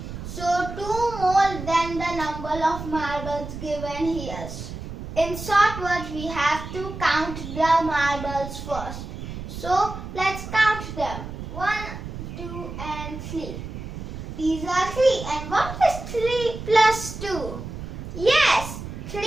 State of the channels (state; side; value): noise; right; rumble, 9 dB below the sound